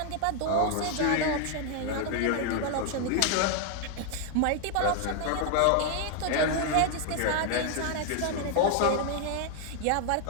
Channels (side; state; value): both; different; correlation 0.00